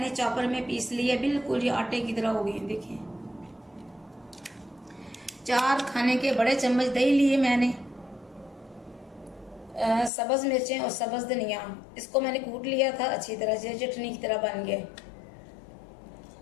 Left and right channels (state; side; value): drops out; right; at 10.1 s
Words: चॉपर में पीस लिए, बिल्कुल ये आटे की तरह हो गए। देखिए 4 खाने के बड़े चम्मच दही लिए मैंने, सब्ज मिर्चें और सब्ज धनिया, इसको मैंने कूट लिया था अच्छी तरह से, चटनी की तरह बन गए।